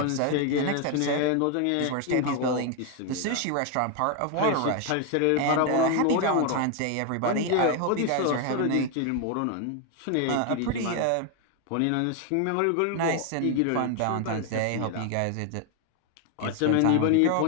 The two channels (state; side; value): different; both; correlation 0.01